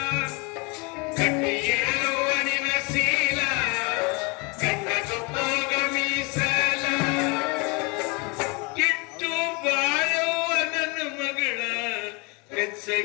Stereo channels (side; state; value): right; quieter; 29.6 dB